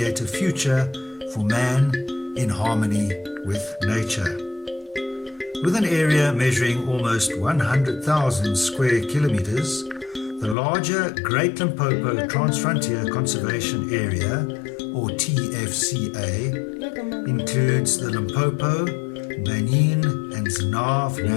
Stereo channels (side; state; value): right; drops out; at 10.6 s